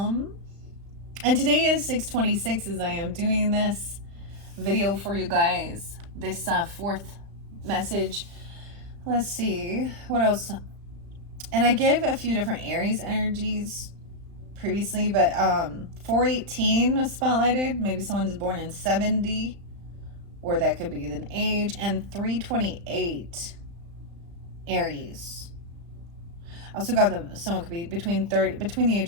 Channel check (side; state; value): left; late; 35 ms